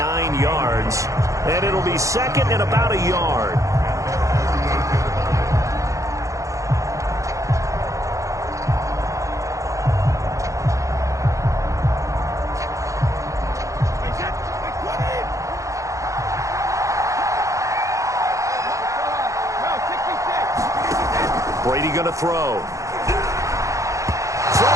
yards. And it'll be second and about a yard. Brady going to throw.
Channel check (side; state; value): left; late; 0.15 ms